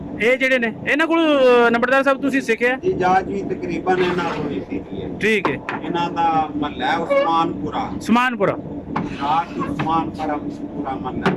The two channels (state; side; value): identical; both; correlation 1.00